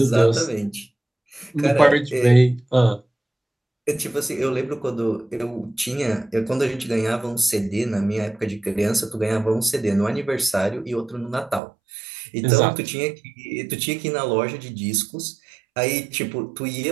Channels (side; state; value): left; drops out; at 11.6 s